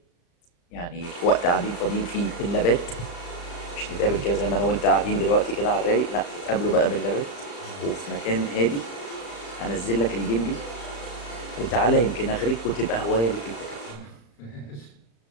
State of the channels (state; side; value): late; right; 35 ms